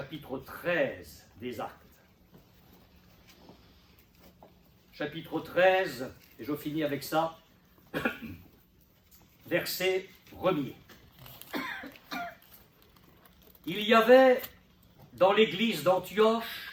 13 des Actes. Chapitre 13, et je finis avec ça, verset 1er. Il y avait dans l'église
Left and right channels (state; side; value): identical; both; correlation 1.00